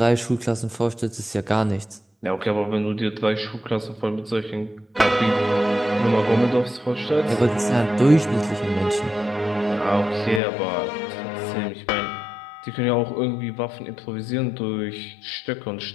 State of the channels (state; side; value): drops out; right; at 10.4 s